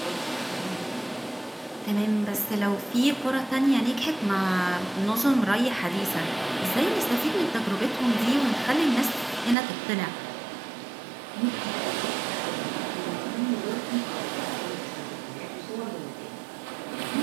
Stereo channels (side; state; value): left; drops out; at 9.6 s